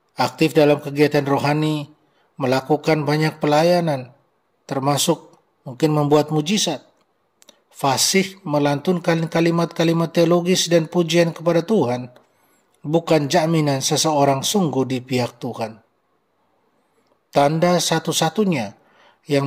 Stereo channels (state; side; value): identical; both; correlation 1.00